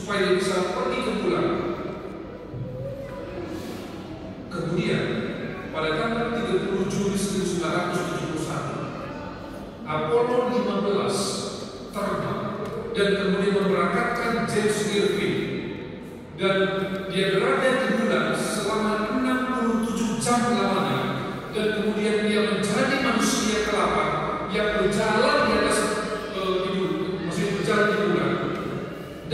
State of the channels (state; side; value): identical; both; correlation 1.00